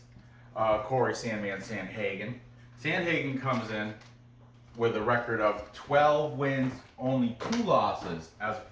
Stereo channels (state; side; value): identical; both; correlation 1.00